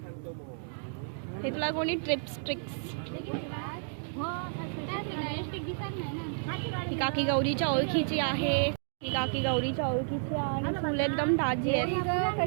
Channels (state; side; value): silent; left; digital silence